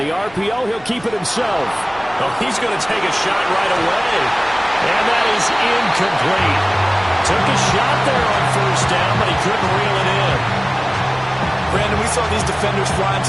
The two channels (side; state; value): right; noise; rumble, 24 dB below the sound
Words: RPO, he'll keep it himself. Oh, he's going to take a shot right away. And that is incomplete. Took a shot there on first down, but he couldn't reel it in. Brandon, we saw these defenders fly